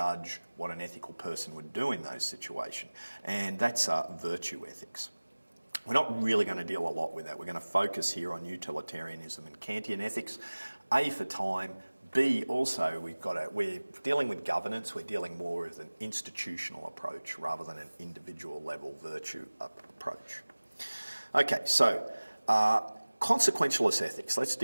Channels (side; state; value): both; inverted; correlation -1.00